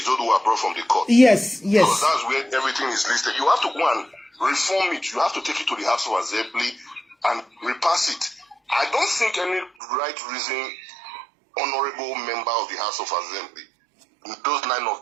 brought from the court. Yes. Because that's where everything is listed. You have to go and reform it. You have to take it to the House of Assembly and repass it. I don't think any right reason honorable member of the House of Assembly, those 9 of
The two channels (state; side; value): drops out; left; at 9.7 s